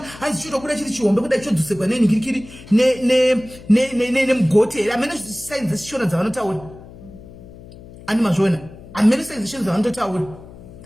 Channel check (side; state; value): left; noise; hum, 18 dB below the sound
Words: hanzi chinobuda chiri chihombe kuda chodzoserwa nenhingirikiri nemugoti, amene signs dzechishona dzavanotaura. Ani mazvona, amene signs dzechishona dzavanotaura.